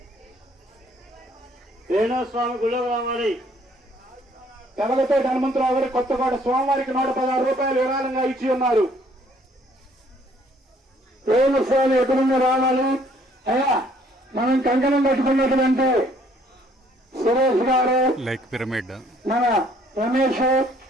స్వామి గుళ్ళో రావాలి. తెలగతోటి హనుమంతరావు గారు కొత్తగూడ స్వామివారికి 116 రూపాయలు విరాళంగా ఇచ్చి ఉన్నారు. స్వామి ఎక్కడున్న రావాలి. అయ్యా మనం కంకణం కట్టుకున్నటువంటి సురేష్ గారు, లైక్ పిరమిడ్, మన రమేష్,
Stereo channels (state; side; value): normal; both; correlation 0.62